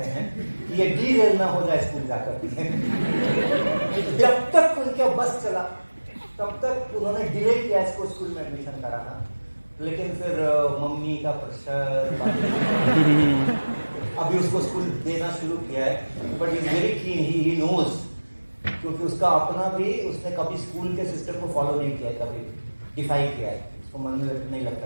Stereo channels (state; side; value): inverted; both; correlation -1.00